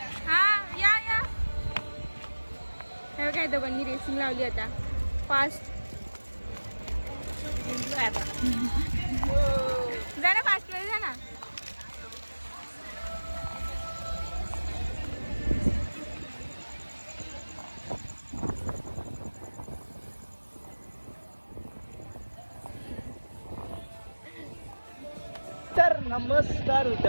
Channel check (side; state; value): both; inverted; correlation -1.00